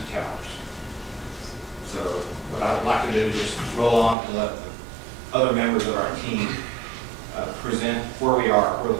towers. So what I would like to do is just roll on and let other members of our team present where we are,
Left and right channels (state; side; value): drops out; left; at 4.2 s